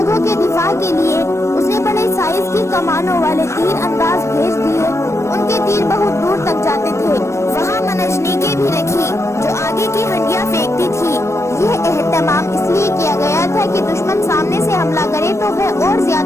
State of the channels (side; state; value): right; late; 0.13 ms